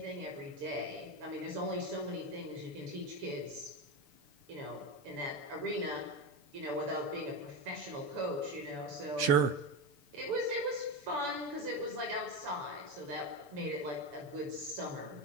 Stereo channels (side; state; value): left; late; 6.9 ms